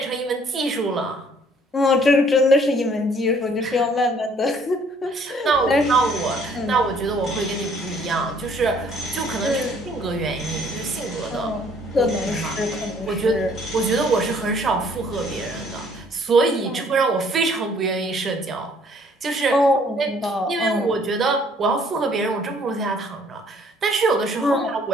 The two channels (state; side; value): normal; both; correlation 0.61